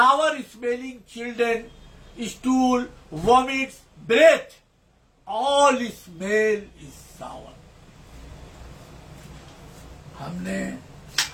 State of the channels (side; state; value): both; identical; correlation 1.00